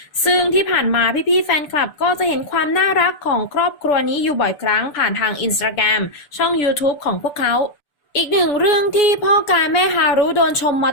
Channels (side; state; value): right; late; 6.9 ms